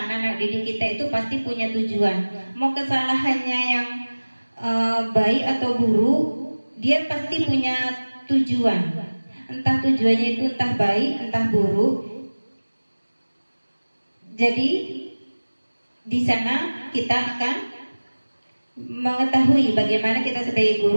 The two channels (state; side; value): inverted; both; correlation -1.00